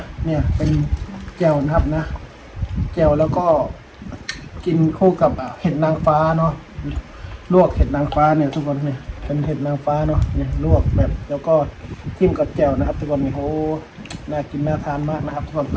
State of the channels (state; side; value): identical; both; correlation 1.00